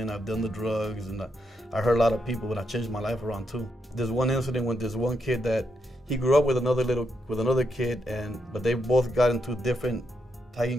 I've done the drugs, and I hurt a lot of people, and I changed my life around too. There's one incident with this one kid that he grew up with another kid, but they both got into different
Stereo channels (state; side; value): normal; both; correlation 0.81